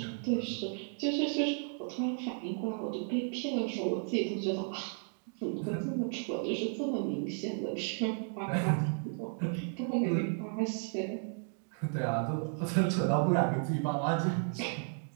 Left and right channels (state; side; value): silent; left; 55 dB below the other